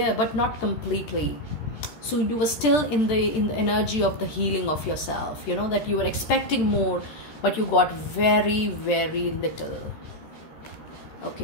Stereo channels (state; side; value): late; right; 13 ms